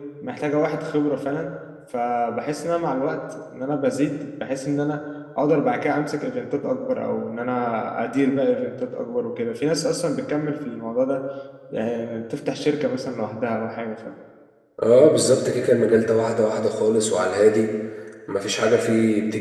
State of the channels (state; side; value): identical; both; correlation 1.00